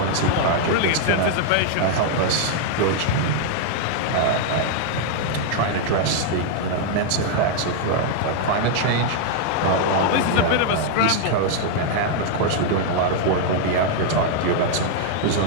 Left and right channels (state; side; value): different; both; correlation 0.00